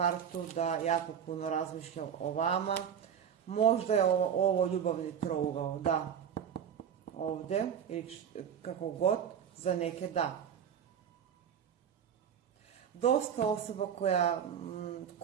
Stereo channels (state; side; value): quieter; left; 8.3 dB